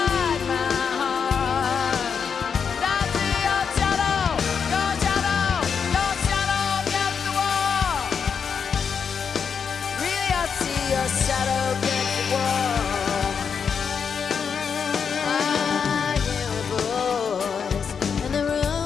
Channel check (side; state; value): right; quieter; 6.5 dB